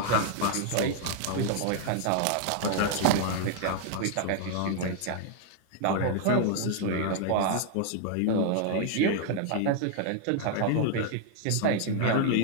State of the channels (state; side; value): different; both; correlation 0.00